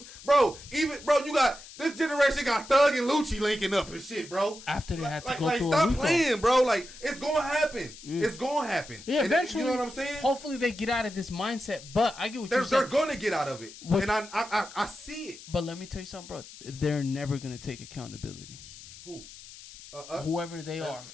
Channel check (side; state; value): left; noise; hiss, 17 dB below the sound